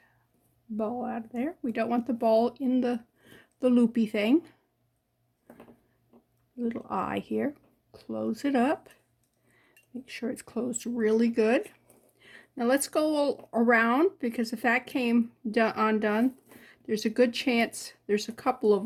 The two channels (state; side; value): identical; both; correlation 1.00